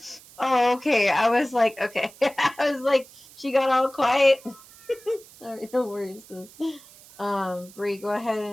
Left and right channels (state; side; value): noise; right; hiss, 22 dB below the sound